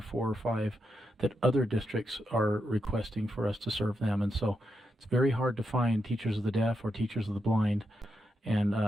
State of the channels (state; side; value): normal; both; correlation 0.84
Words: 4 or 5 that other districts are requesting for us to serve them. And so it's very hard to find teachers of the deaf or teachers of the blind. And